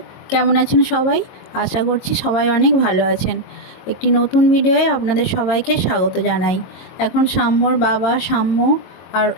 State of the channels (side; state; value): right; late; 22 ms